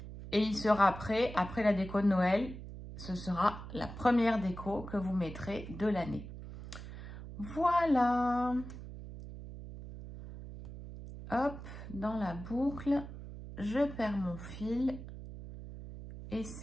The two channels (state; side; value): noise; right; hum, 11 dB below the sound